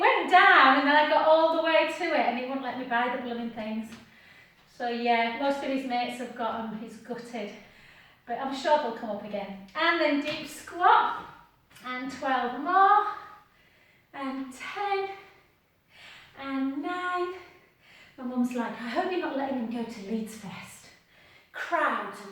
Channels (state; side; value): identical; both; correlation 1.00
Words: down and then I got all the way to it and he wouldn't let me buy the blooming things. So yeah, most of his mates have got them, he's gutted. But I'm sure they'll come up again. And then deep squat, and 12 more, and 10, and 9. My mum's like, I hope you're not letting him go to Leeds Fest. Crowds